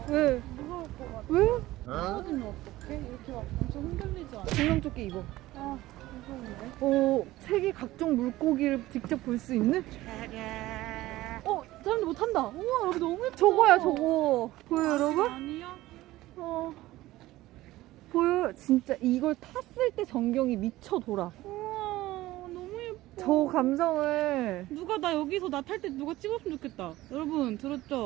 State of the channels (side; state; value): left; quieter; 17.0 dB